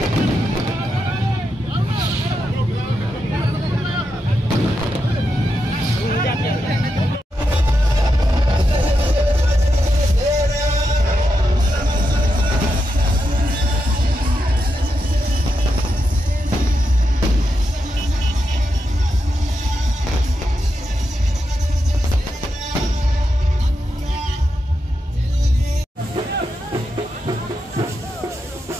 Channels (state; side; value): normal; both; correlation 0.85